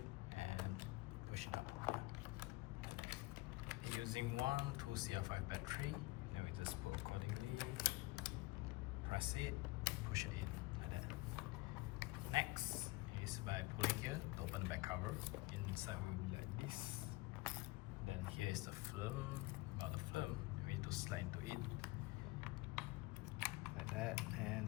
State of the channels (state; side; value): quieter; right; 21.8 dB